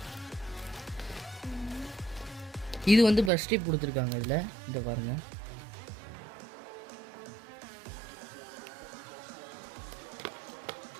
இது வந்து ப்ரஷ் டிப் கொடுத்துருக்காங்க. இதில் இதை பாருங்கள்.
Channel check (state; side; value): drops out; left; at 3.3 s